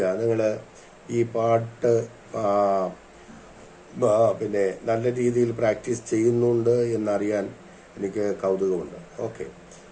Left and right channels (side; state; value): both; identical; correlation 1.00